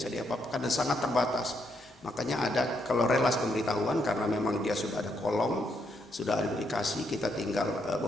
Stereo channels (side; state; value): both; normal; correlation 0.77